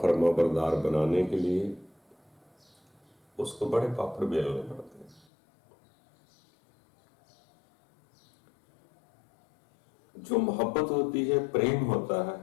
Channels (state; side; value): drops out; right; at 5.2 s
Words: बरदार बनाने के लिए उसको बड़े पापड़ बेलने पड़ते हैं। जो मोहब्बत होती है, प्रेम होता है,